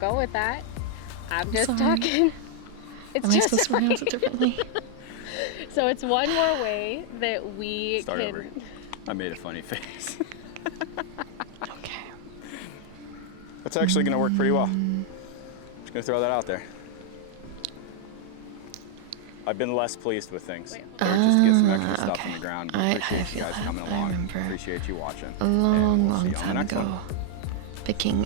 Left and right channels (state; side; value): different; both; correlation 0.00